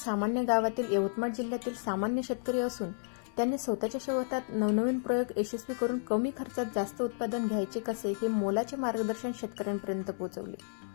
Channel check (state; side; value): silent; right; 56 dB below the other